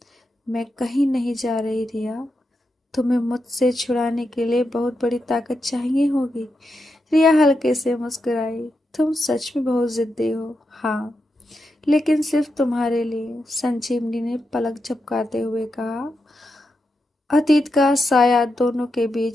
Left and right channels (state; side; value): normal; both; correlation 0.86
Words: मैं कहीं नहीं जा रही रिया। तुम्हें मुझसे छुड़ाने के लिए बहुत बड़ी ताकत चाहिए होगी। रिया हल्के से मुस्कुराई। तुम सच में बहुत जिद्दी हो। हाँ, लेकिन सिर्फ तुम्हारे लिए। संजीवनी ने पलक झपकाते हुए कहा। अतीत का साया दोनों के